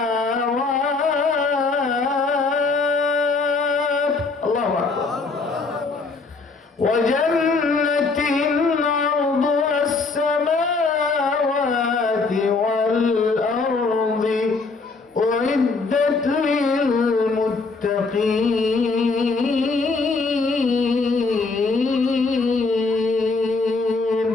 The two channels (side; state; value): right; quieter; 4.0 dB